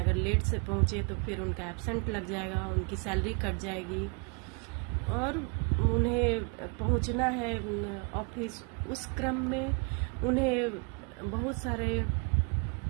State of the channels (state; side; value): quieter; left; 34.7 dB